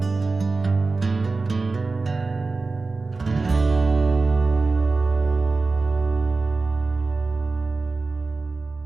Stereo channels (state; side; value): quieter; left; 3.8 dB